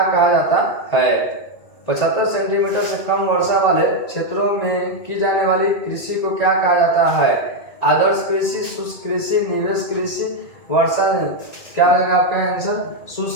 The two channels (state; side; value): late; right; 2.0 ms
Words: कहा जाता है? 75 सेंटीमीटर से कम वर्षा वाले क्षेत्रों में की जाने वाली कृषि को क्या कहा जाता है? आदर्श कृषि, शुष्क कृषि, निवेश कृषि, वर्षा। क्या हो जाएगा आपका आंसर?